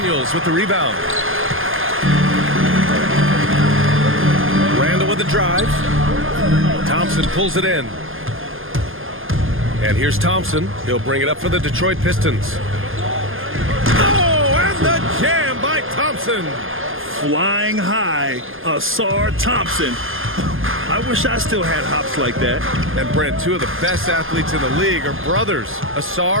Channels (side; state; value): left; late; 0.59 ms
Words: with the rebound. Randall with the drive. Thompson pulls it in. And here's Thompson. He'll bring it up for the Detroit Pistons. Oh, and the jam by Thompson. Flying high, Asar Thompson. I wish I still had hops like that. And Brent, 2 of the best athletes in the league are brothers,